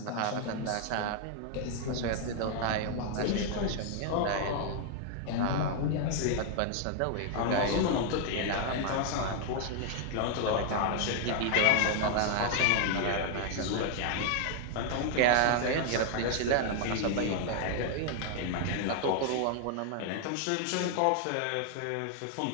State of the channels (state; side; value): different; both; correlation 0.00